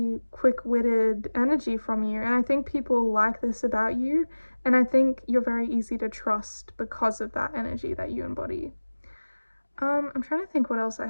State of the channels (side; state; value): both; inverted; correlation -1.00